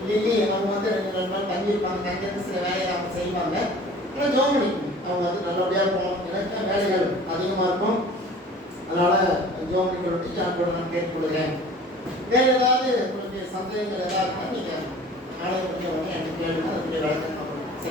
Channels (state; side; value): normal; both; correlation 0.46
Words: லில்லி அவங்க வந்து 2 நாள் தங்கியிருப்பாங்க, தங்கியிருந்து சில வேலையை அவங்க செய்வாங்க. ஆனால் ஜோம் பண்ணிக்கணும், அவங்க வந்து நல்லபடியாக போகணும், எனக்கு வேலைகள் அதிகமாக இருக்கும். அதனால் ஜோம் பண்ணிக்கிறோம் நான் கூட நான் கேட்டுக்கொள்கிறேன். வேறு ஏதாவது உங்களுக்கு சந்தேகங்கள் ஏதாவது இருந்தால் நீங்கள் நாளைய பற்றி உடனே எனக்கு கேளுங்க, அதுக்குரிய விளக்கம் பண்ணணும்